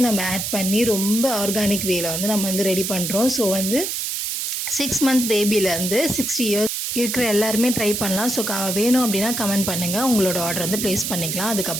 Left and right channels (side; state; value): right; noise; hiss, 2 dB below the sound